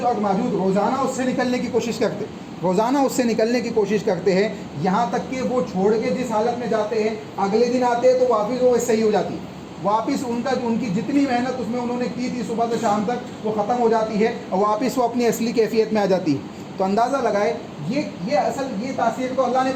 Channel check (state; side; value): identical; both; correlation 1.00